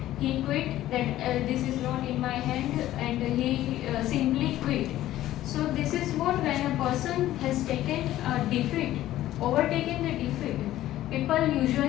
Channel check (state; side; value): quieter; right; 14.1 dB